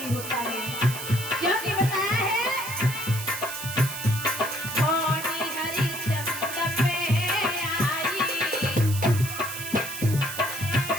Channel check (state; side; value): noise; right; hiss, 8 dB below the sound